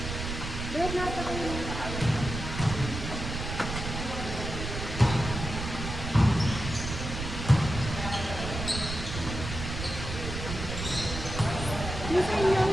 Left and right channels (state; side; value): noise; right; rumble, 6 dB below the sound